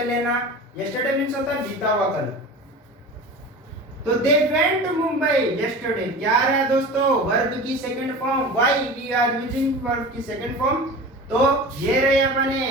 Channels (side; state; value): both; normal; correlation 0.34